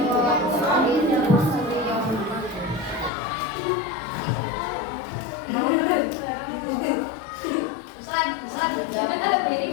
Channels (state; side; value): drops out; right; at 3.1 s